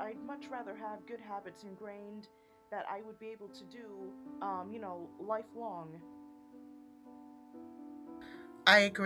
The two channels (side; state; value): both; identical; correlation 1.00